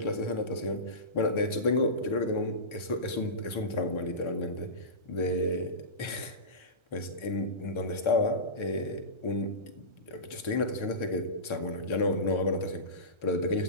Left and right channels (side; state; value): right; late; 1.3 ms